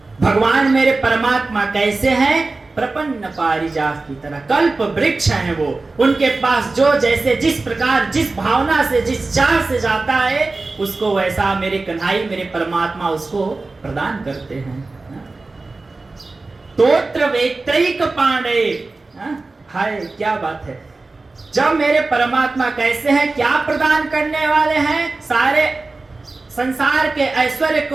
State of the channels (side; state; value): left; quieter; 3.5 dB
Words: भगवान मेरे परमात्मा कैसे हैं? प्रपन्न पारिजात की तरह, कल्प वृक्ष हैं वो। उनके पास जो जैसे, जिस प्रकार, जिस भावना से, जिस चाह से जाता है, उसको वैसा मेरे कन्हैया, मेरे परमात्मा उसको प्रदान करते हैं। तोत्र वेत्रैक पांडे। हाय क्या बात है! जब मेरे परमात्मा कैसे हैं, क्या प्रदान करने वाले हैं? सारे संसार के ऐश्वर्य